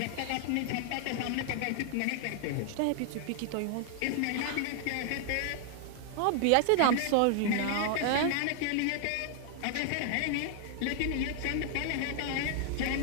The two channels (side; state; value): both; different; correlation 0.00